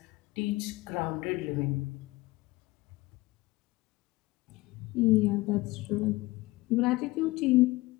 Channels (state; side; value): quieter; right; 20.4 dB